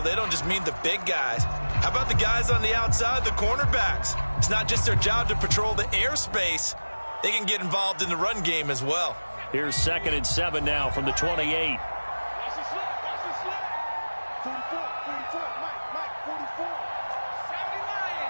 They don't just mean the big guys. How about the guys on the outside, the cornerbacks? It's not just their job to patrol the airspace. They can get involved in the run game as well. Here's 2nd and 7 now from the 28.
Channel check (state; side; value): inverted; both; correlation -1.00